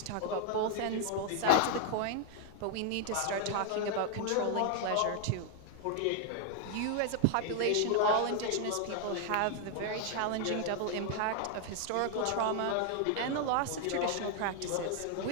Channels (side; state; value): both; different; correlation 0.00